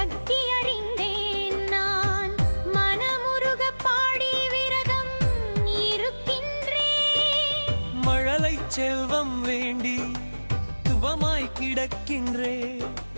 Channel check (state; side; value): inverted; both; correlation -1.00